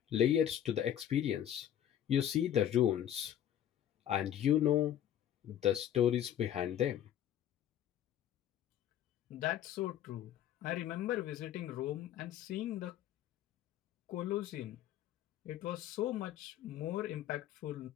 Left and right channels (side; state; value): right; quieter; 10.8 dB